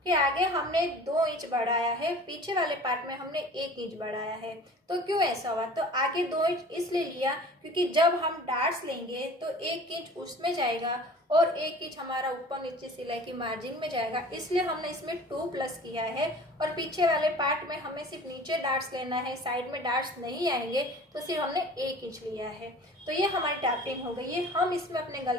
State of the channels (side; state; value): both; normal; correlation 0.44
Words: कि आगे हमने 2 इंच बढ़ाया है, पीछे वाले पार्ट में हमने 1 इंच बढ़ाया है, तो क्यों ऐसा हुआ? तो आगे 2 इंच इसलिए लिया क्योंकि जब हम डार्ट्स लेंगे तो 1 इंच उसमें जाएगा और 1 इंच हमारा ऊपर नीचे सिलाई की मार्जिन में जाएगा, इसलिए हमने इसमें 2 प्लस किया है। और पीछे वाले पार्ट में हमें सिर्फ नीचे डार्ट्स लेना है, साइड में डार्ट्स नहीं आएंगे, तो सिर्फ हमने 1 इंच लिया है। तो ये हमारी ड्राफ्टिंग हो गई है। हम इसमें अपने